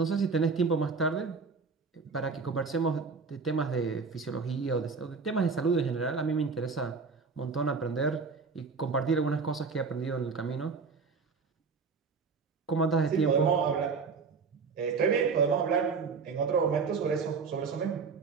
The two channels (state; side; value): quieter; left; 4.9 dB